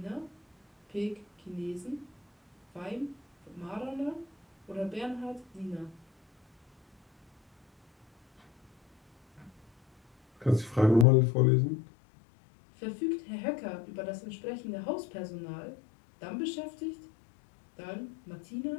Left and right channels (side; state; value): right; drops out; at 11.1 s